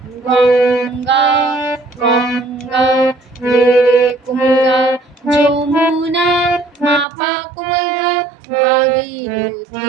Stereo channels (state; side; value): drops out; left; at 7.1 s